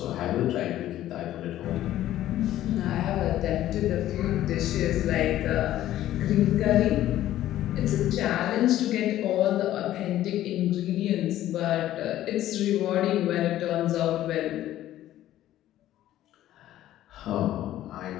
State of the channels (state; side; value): quieter; right; 13.4 dB